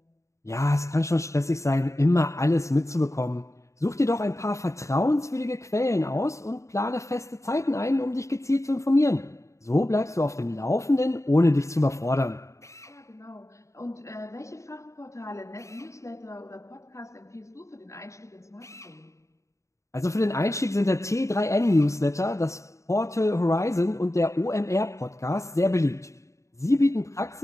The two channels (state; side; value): late; right; 0.15 ms